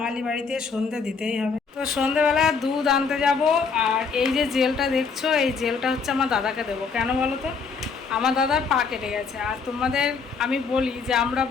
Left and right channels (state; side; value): quieter; right; 5.2 dB